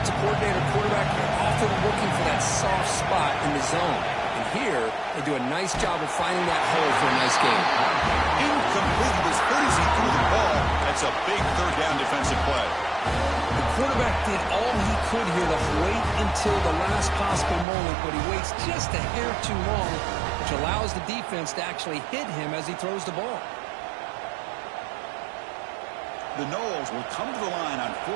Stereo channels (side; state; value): left; drops out; at 17.7 s